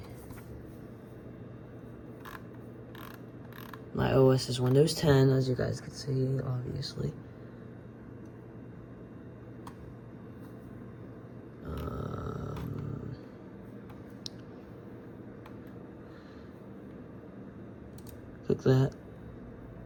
My OS is Windows 10, as you guys can see, obviously. Click that.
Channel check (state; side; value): identical; both; correlation 1.00